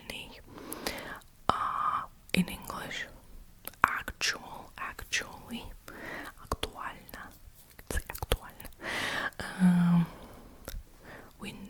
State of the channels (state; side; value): identical; both; correlation 1.00